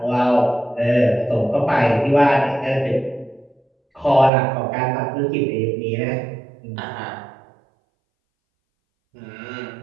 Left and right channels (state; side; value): drops out; left; at 4.3 s